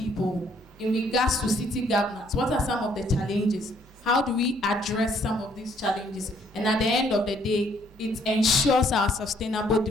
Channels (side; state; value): both; normal; correlation 0.65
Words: in regards to city governance. What are some of the challenges? How do we address some of these challenges? And at the end of the day, it ensures our sustainable